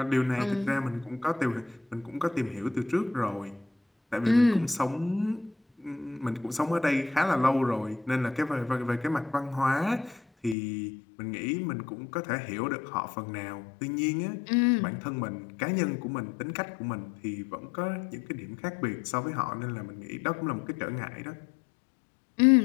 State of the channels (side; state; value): right; drops out; at 10.6 s